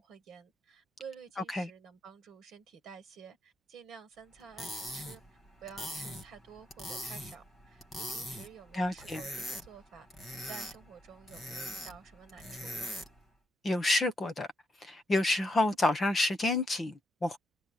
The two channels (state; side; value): normal; both; correlation 0.80